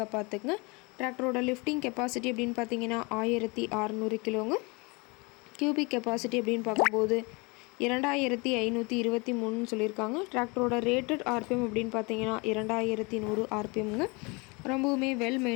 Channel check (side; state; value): right; quieter; 28.1 dB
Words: பார்த்துக்குங்க. டிராக்டரோட லிஃப்டிங் கெப்பாசிட்டி அப்படின்னு பார்த்தீங்கன்னா 1600 கிலோங்க. கியூபிக் கெப்பாசிட்டி அப்படின்னு பார்க்கும்போது 2523 சொல்லியிருக்காங்க. டிராக்டரோட ரேட்டட் RPM அப்படின்னு பார்த்தீங்கன்னா 2100 RPMங்க. ரொம்பவுமே வெல்